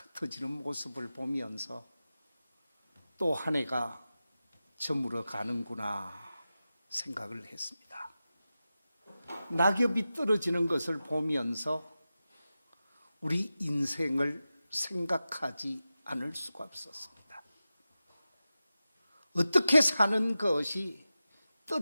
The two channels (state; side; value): inverted; both; correlation -0.94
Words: 모습을 보면서 또 한 해가 저물어 가는구나 생각을 했습니다. 낙엽이 떨어지는 것을 보면서 우리 인생을 생각하지 않을 수가 없었습니다. 어떻게 사는 것이